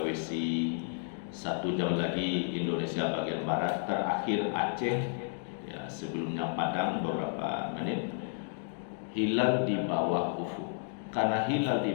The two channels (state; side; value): silent; right; digital silence